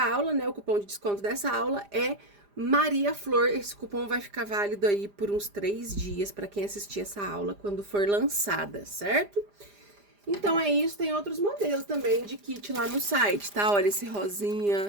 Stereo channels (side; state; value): left; late; 4.9 ms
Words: né, o cupom de desconto dessa aula é Maria Flor. Esse cupom vai ficar válido aí por uns 3 dias para quem assistir essa aula quando for lançada, certo? Então, é isso. Tem outros modelos também de kit lá no site, tá? Olha esse